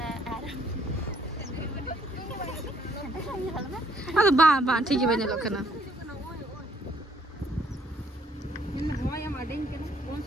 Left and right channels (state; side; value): normal; both; correlation 0.66